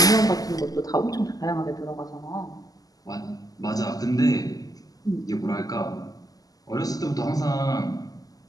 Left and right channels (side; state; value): right; late; 0.17 ms